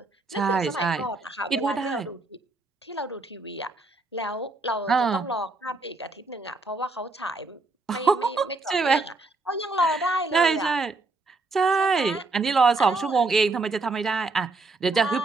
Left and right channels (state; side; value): quieter; left; 3.5 dB